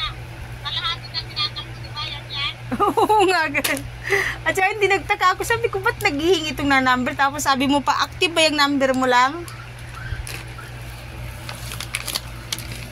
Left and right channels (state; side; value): identical; both; correlation 1.00